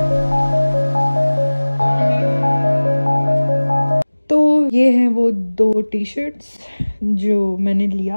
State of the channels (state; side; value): inverted; both; correlation -1.00